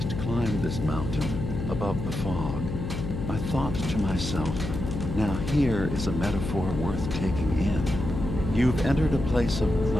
climbed this mountain above the fog, I thought to myself, now here is a metaphor worth taking in. You've entered a place of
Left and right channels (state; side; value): noise; left; hum, 5 dB below the sound